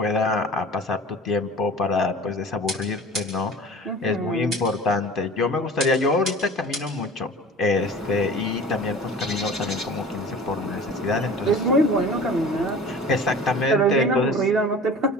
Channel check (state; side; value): normal; both; correlation 0.41